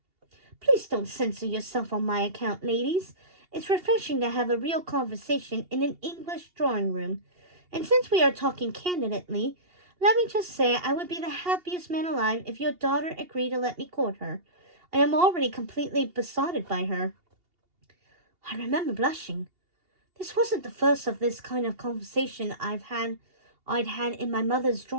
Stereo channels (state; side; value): late; left; 2.8 ms